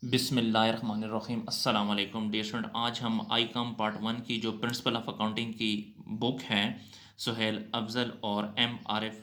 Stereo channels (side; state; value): both; identical; correlation 1.00